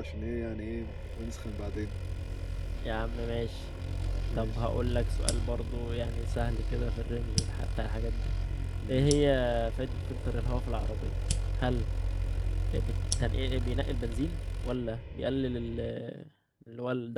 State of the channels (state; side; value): identical; both; correlation 1.00